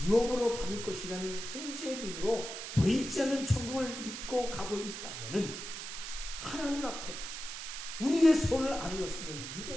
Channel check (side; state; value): right; noise; hiss, 7 dB below the sound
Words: 받을 것이라는 현재의 눈으로 보이지 않는 천국을 믿고 가고 있다면 하나님 앞에 우리의 소원을 아니었으면